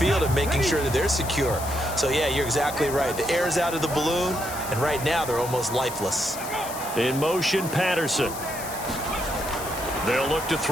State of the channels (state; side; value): noise; left; hiss, 10 dB below the sound